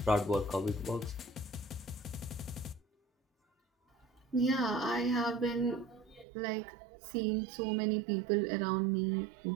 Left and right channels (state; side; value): drops out; left; at 6.2 s